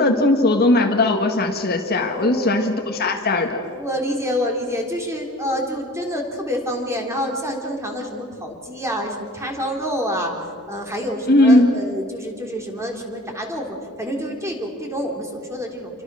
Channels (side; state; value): both; normal; correlation 0.44